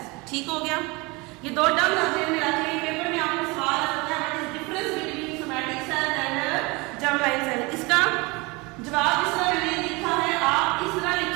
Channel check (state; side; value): quieter; left; 25.6 dB